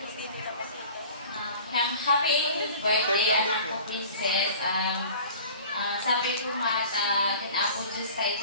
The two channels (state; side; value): inverted; both; correlation -0.43